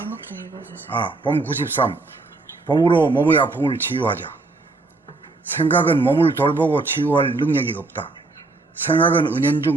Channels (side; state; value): left; quieter; 3.4 dB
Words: 좀 읽어주세요. 봄 93. 봄으로 몸의 아픔을 치유하자. 생각은 몸을 돌보고 치유할 능력이 없다. 생각은